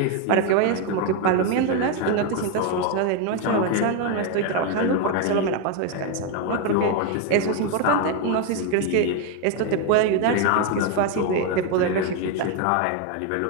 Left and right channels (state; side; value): different; both; correlation 0.02